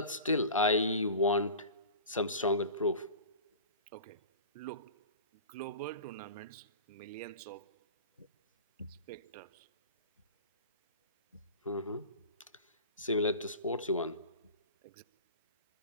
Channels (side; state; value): both; inverted; correlation -0.35